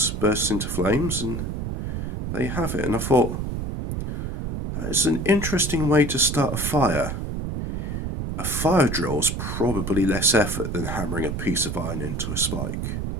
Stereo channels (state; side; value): noise; right; rumble, 3 dB below the sound